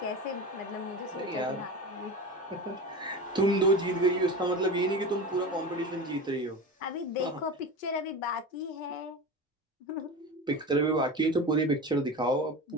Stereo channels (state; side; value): normal; both; correlation 0.28